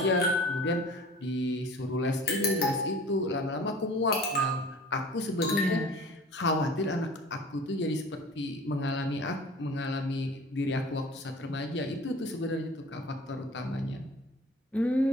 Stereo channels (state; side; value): normal; both; correlation 0.44